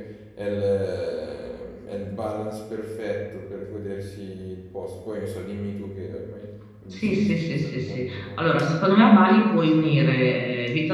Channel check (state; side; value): identical; both; correlation 1.00